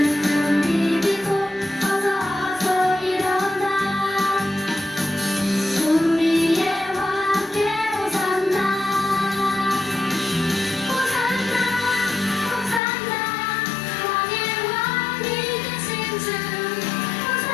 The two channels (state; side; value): drops out; right; at 12.8 s